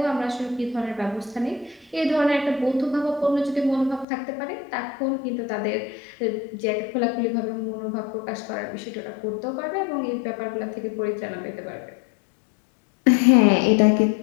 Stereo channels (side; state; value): right; drops out; at 4.0 s